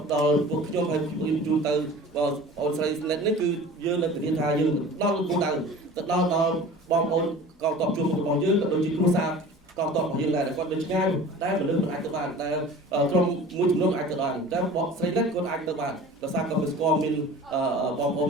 ពួកខ្ញុំហើយខ្ញុំជូនទៅបងអូនស្រីស្និតនេះគឺយើងនឹងធានាថាយើងដល់គោលដៅទៅដល់បងប្អូនកងទ័ពជួរមុខរបស់យើងក៏ដូចជាគ្រួសារកងទ័ពរបស់យើងដែរគាត់នៅឆ្ងាយតែមនុស្សមិនអាចទៅបានតែក្រុមមួយចំនួនអាចទៅបានតែបងស្រីស្និតគាត់អាចទៅបានដោយសារគាត់ស្គាល់មានបងប្អូន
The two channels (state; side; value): normal; both; correlation 0.41